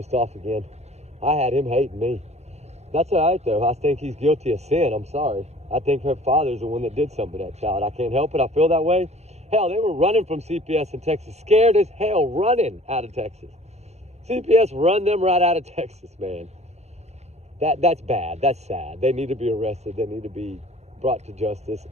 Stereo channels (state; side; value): late; left; 0.31 ms